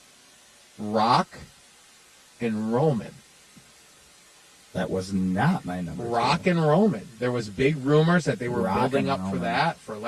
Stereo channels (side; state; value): both; identical; correlation 1.00